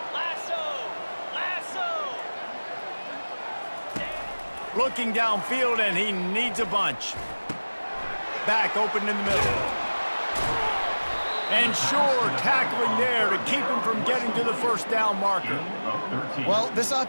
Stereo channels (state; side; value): inverted; both; correlation -1.00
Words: Looking downfield, and he needs a bunch. Back open in the middle. And sure, tackling there to keep him from getting to the first down marker. Well, this